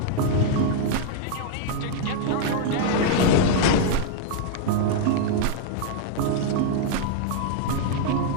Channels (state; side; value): different; both; correlation -0.01